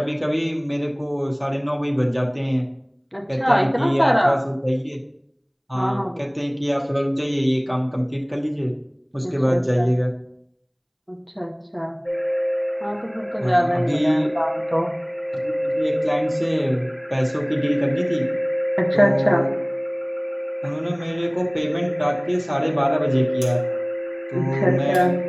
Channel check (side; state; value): both; identical; correlation 1.00